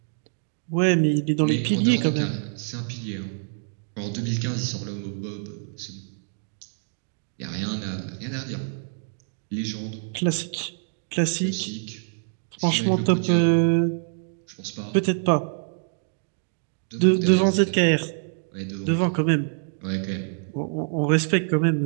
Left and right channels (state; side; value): silent; left; digital silence